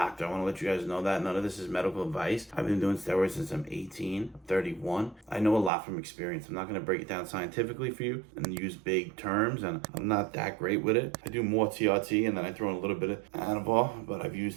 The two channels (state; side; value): drops out; left; at 5.7 s